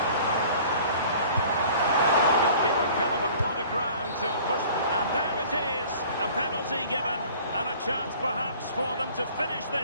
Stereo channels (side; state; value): both; inverted; correlation -0.48